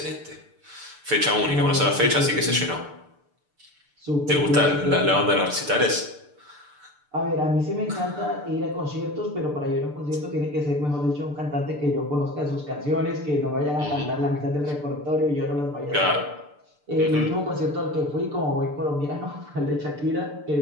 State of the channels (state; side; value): late; left; 6.8 ms